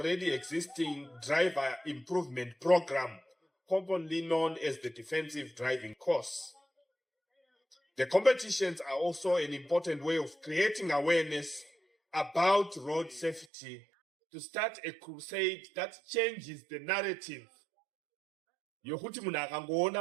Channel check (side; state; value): left; drops out; at 13.5 s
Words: existing driver improvement program, commonly known as the defensive driving course. The competitions are also an important way of creating awareness about road safety, to start a crusade that changes the narrative. Yokuti munhu